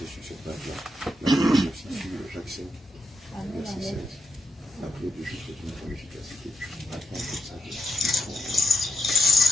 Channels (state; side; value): normal; both; correlation 0.85